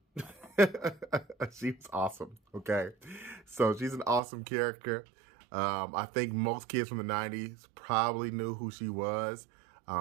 She was awesome, okay? So she's an awesome character. I think most kids from the 90s probably knew who she was.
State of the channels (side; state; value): left; drops out; at 4.2 s